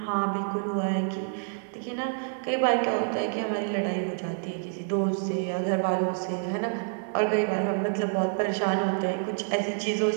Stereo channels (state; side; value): silent; left; digital silence